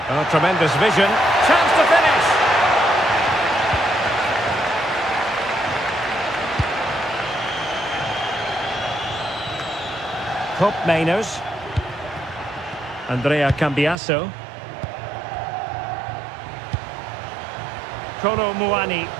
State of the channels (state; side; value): drops out; left; at 14.0 s